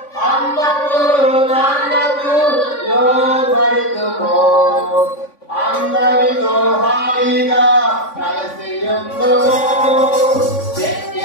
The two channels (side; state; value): right; late; 3.5 ms